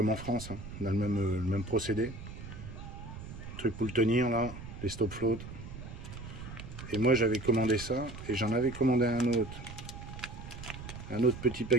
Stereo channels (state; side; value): noise; right; rumble, 11 dB below the sound